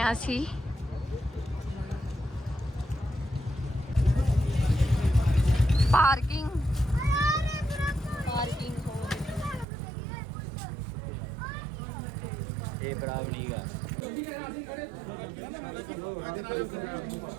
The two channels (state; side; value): drops out; left; at 9.7 s